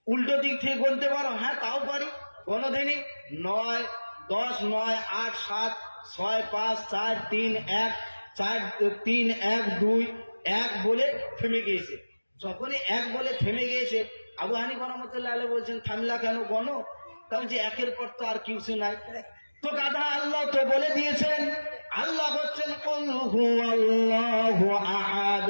উল্টো দিক থেকে গুনতে পারো? হ্যাঁ তাও পারি। গণধিনী 9 10 9 8 7 6 5 4 3 1 4 3 1 2 1 বলে থেমে গিয়েছে। যখনই 1 বলে থেমে গিয়েছে, আবু হানিফা রাহমাতুল্লাহ আলাইহি বলছেন, থামলা কেন, গণো। তাও যে 1 এর পর তো আর কিছু নাই। তো গাধা, আল্লাহ তো বলে দিয়েছেন, আল্লাহ হচ্ছেন কুল হুয়াল্লাহু আহাদ,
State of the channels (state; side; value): inverted; both; correlation -1.00